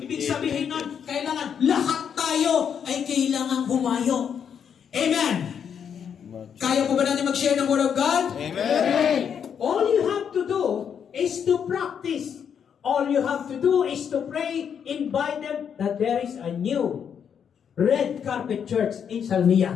sabihin nun, kailangan lahat tayo ay kailangan humayo. Amen. Kaya po ba natin mag-share ng Word of God? Amen. All you have to do is to practice. All you have to do is to pray, invite them that there is a new red carpet church in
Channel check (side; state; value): right; quieter; 7.8 dB